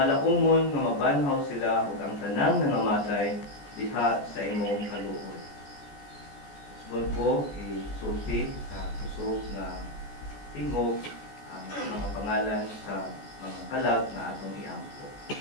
nga mabanhaw sila ug ang tanang nangamatay diha sa imong kaluoy. Subod ko isulti sa kusog nga tingog ang mga pangalan sa mga kalag na atong iampo.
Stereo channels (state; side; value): late; right; 14 ms